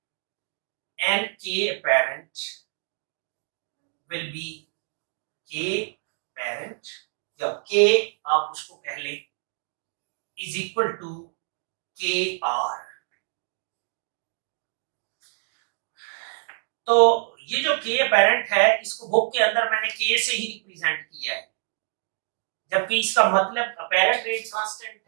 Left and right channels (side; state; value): left; silent; digital silence